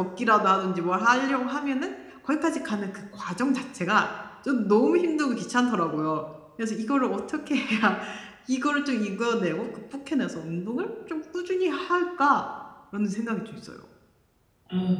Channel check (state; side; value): identical; both; correlation 1.00